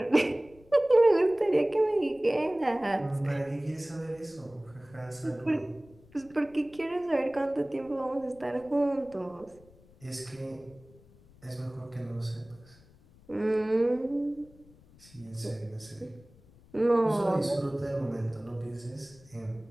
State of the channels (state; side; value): noise; left; rumble, 26 dB below the sound